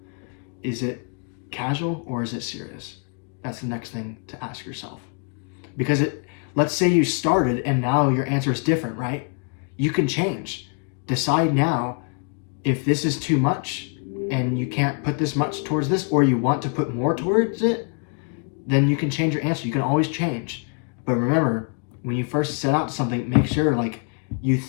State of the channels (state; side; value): quieter; right; 39.6 dB